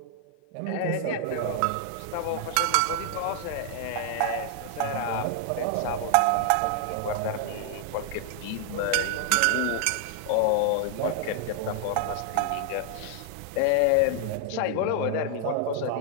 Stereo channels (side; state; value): both; different; correlation 0.00